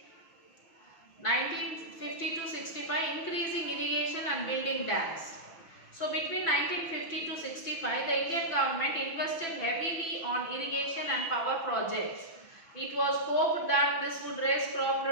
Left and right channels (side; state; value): right; late; 6.0 ms